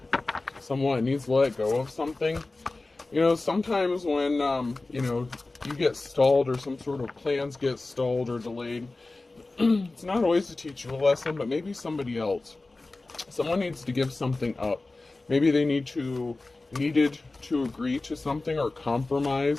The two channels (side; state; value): right; quieter; 3.2 dB